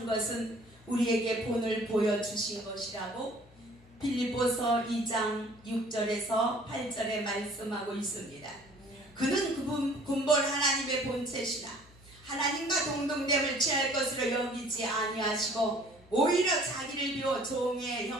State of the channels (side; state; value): left; noise; hum, 26 dB below the sound